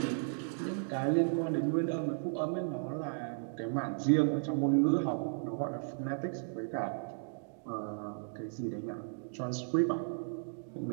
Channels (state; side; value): silent; left; digital silence